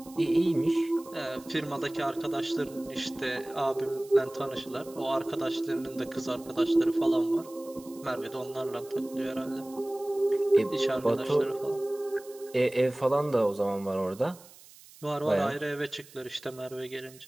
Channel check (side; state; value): right; noise; hiss, 22 dB below the sound